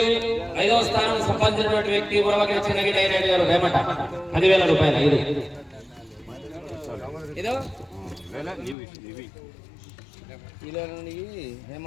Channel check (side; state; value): right; drops out; at 8.8 s